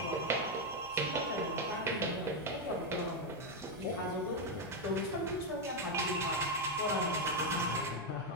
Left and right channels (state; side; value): normal; both; correlation 0.03